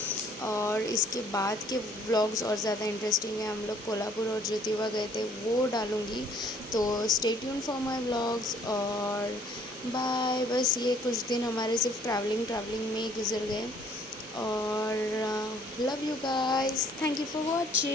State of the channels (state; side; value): normal; both; correlation 0.59